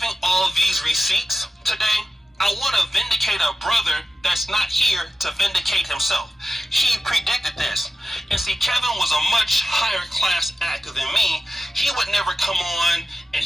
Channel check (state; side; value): normal; both; correlation 0.94